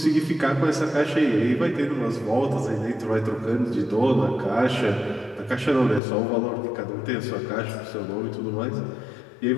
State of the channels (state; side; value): drops out; right; at 6.0 s